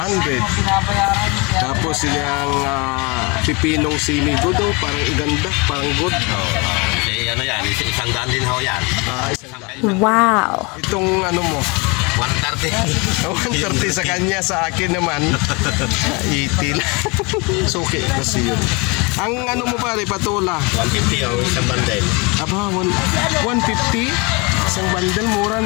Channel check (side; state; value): right; quieter; 28.4 dB